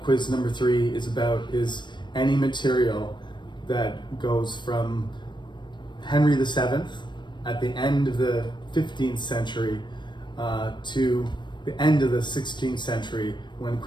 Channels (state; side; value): late; right; 0.22 ms